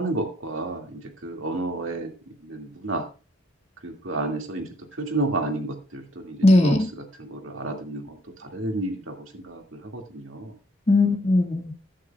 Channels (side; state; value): both; normal; correlation 0.67